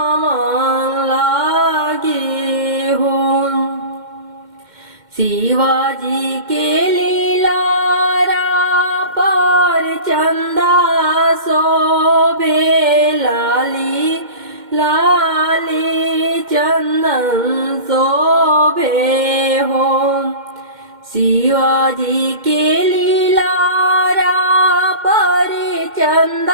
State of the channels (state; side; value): late; left; 2.1 ms